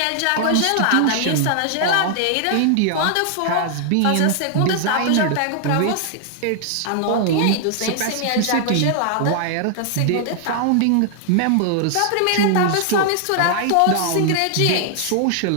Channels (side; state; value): both; different; correlation -0.01